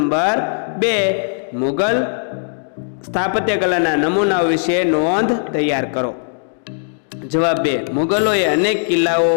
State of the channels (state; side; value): silent; right; digital silence